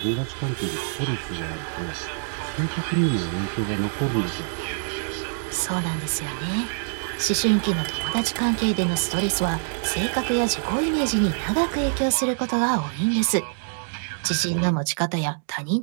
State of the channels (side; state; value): left; silent; digital silence